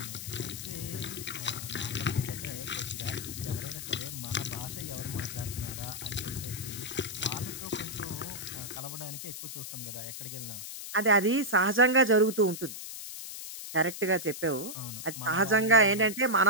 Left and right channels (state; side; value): noise; left; hiss, 9 dB below the sound